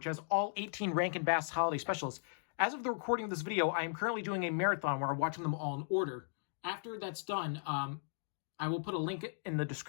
has all 18 Rankin Bass holiday specials. As of the recording of this video, I am currently doing a marathon where I'm watching them all in order. After that's done, I will put a link in the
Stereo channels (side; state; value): right; silent; digital silence